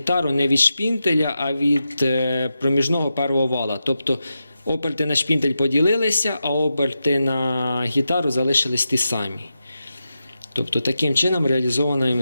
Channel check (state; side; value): inverted; both; correlation -0.89